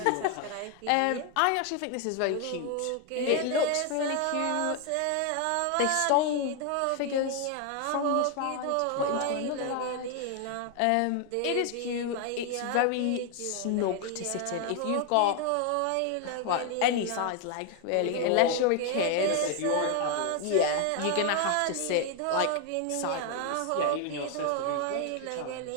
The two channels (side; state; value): both; different; correlation 0.00